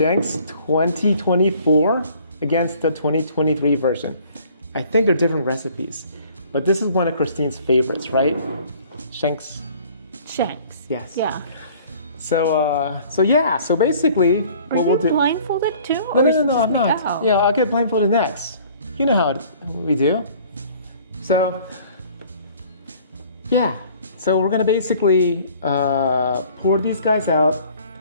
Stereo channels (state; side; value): inverted; both; correlation -0.53